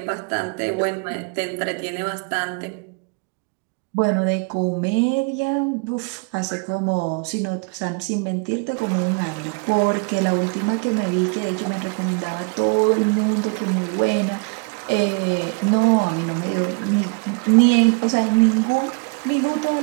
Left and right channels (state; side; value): quieter; left; 34.1 dB